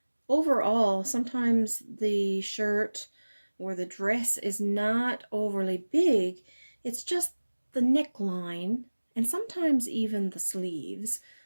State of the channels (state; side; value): inverted; both; correlation -1.00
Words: overall sometimes the shirt or the dress is not overly big, it's just the neckline and sometimes even the sleeves.